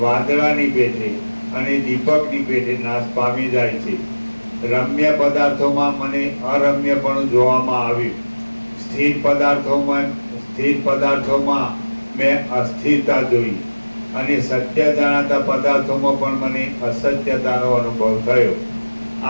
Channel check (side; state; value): both; inverted; correlation -1.00